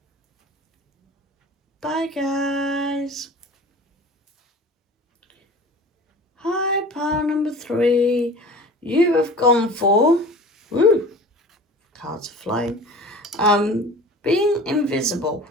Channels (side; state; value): both; normal; correlation 0.40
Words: Bye guys. Hi, pile number 3. You have gone for, woo, cards are flying, being invisible.